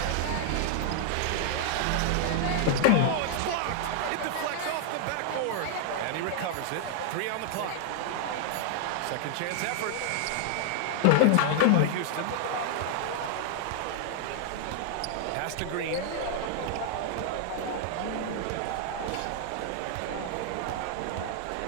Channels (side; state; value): both; different; correlation -0.01